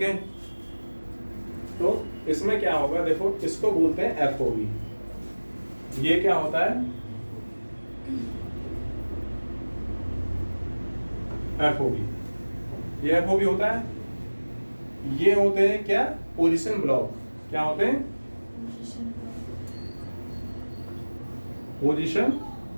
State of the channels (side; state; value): both; inverted; correlation -1.00